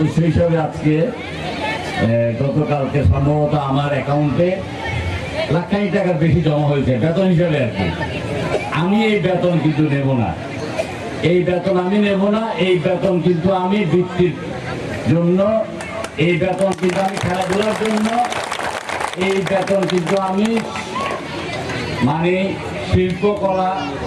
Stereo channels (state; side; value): identical; both; correlation 1.00